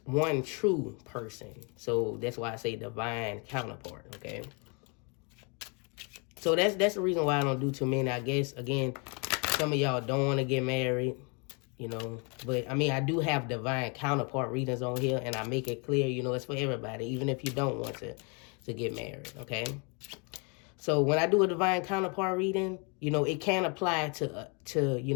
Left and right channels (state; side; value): quieter; right; 33.9 dB